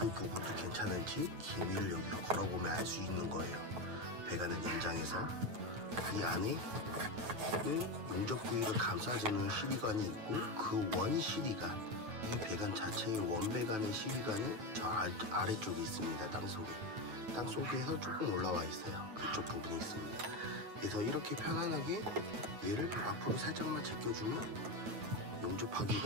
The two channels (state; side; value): late; left; 9.0 ms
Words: 부분도 괜찮은지 기미를 여기서 걸어보면 알 수 있는 거예요. 배관을 연장해서 이 안에는 용접 부위를 감싸주는 CD관이 있고, 그 원 CD관, 이 배관 자체의 원배관의 CD관은 저 아래쪽에 있습니다. 땅속에서 조금 올라와 있어요. 그쪽 부분이 있습니다. 그래서 이렇게 편안하게 얘를 앞으로 살짝만 제껴주면